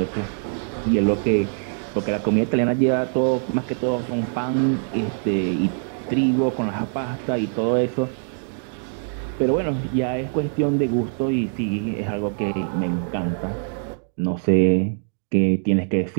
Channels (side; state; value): left; silent; digital silence